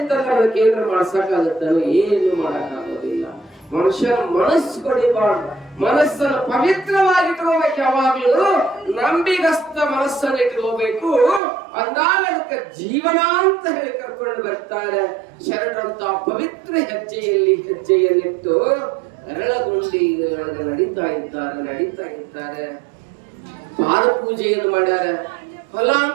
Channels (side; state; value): left; drops out; at 11.4 s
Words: ಅದಕ್ಕೆ ಏನಾರ ಮಾಡ್ಸಕ್ಕಾಗತ್ತ? ಏನು ಮಾಡಕ್ಕಾಗೋದಿಲ್ಲ. ಮನುಷ್ಯನ ಮನಸ್ಸು ಹೊಡಿಬಾರ್ದು. ಮನಸ್ಸನ್ನು ಪವಿತ್ರವಾಗಿ ಇಟ್ಕೋಬೇಕು. ಯಾವಾಗ್ಲೂ ನಂಬಿಗಸ್ತ ಮನಸ್ಸನ್ನು ಇಟ್ಕೋಬೇಕು. ಅಂದಾಗ ಅದಕ್ಕೆ ಜೀವನ ಅಂತ ಹೇಳಿ ಕರ್ಕೊಂಡು ಬರ್ತಾರೆ. ಶರಣರಂತ ಪವಿತ್ರ ಹೆಜ್ಜೆಯನ್ನಿಟ್ಟು ಅರಳಗುಂಡಿ ನಡೀತಾ ಇದ್ದಾರೆ. ಪಾದ ಪೂಜೆಯನ್ನು ಮಾಡ್ಯಾರ. ಹೊಲ